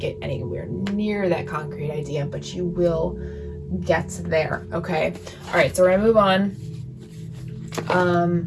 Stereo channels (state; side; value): identical; both; correlation 1.00